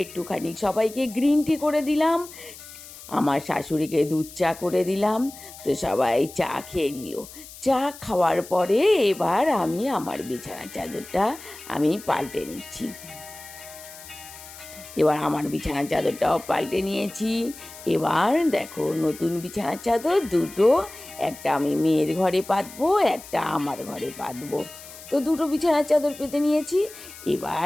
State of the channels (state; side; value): noise; left; hiss, 16 dB below the sound